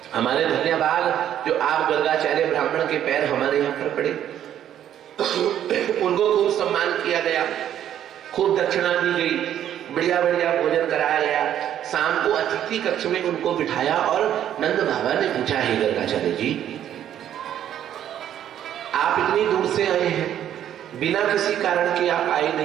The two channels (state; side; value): quieter; left; 10.7 dB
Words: हमारे धन्यवाद जो आप गर्गाचार्य ब्राह्मण के पैर हमारे यहाँ पर पड़े। उनको खूब सम्मान किया गया, खूब दक्षिणा दी गई, बढ़िया बढ़िया भोजन कराया गया। शाम को अतिथि कक्ष में उनको बिठाया और नंद बाबा ने पूछा, हे गर्गाचार्य जी, आप इतनी दूर से आए हैं, बिना किसी कारण के आप आए